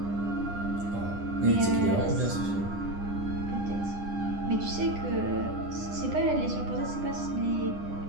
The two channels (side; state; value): left; late; 9.9 ms